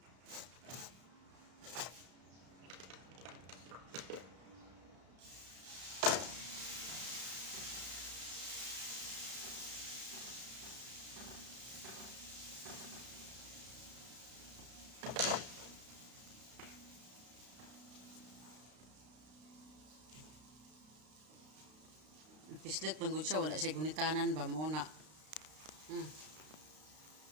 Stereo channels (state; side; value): late; left; 32 ms